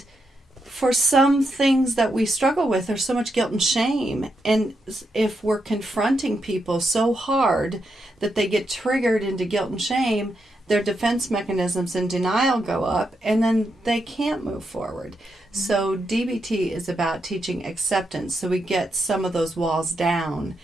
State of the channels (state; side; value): normal; both; correlation 0.82